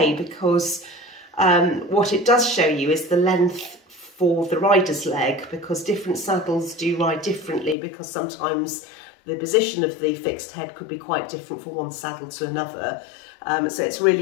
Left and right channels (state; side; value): drops out; right; at 7.8 s